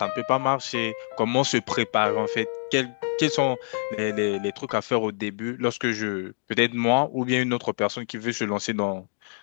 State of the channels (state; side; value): silent; right; digital silence